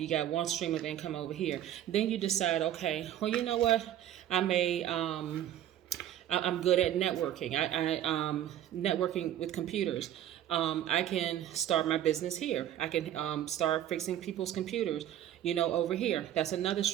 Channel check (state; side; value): quieter; left; 11.5 dB